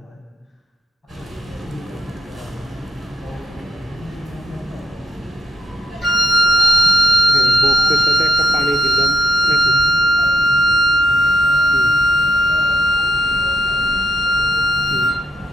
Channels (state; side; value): normal; both; correlation 0.80